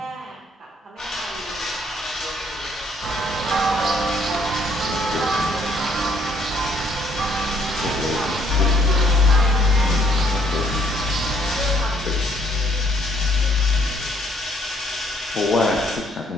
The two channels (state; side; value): normal; both; correlation 0.66